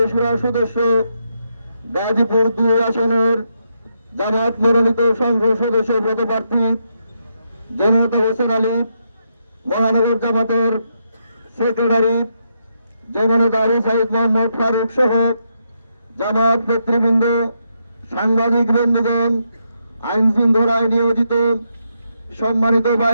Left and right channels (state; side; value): inverted; both; correlation -0.80